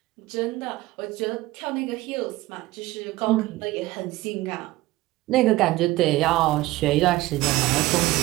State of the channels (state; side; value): quieter; left; 18.4 dB